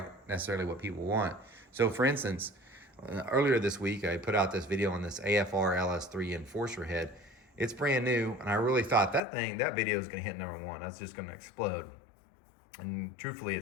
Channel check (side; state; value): right; drops out; at 9.2 s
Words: necessarily what people want. So for instance, earlier this week, I put out this video on this AFR LS3 Enforcer head. It's brand new, and I really thought that video is going to hit #1. That's just going to explode. And truthfully,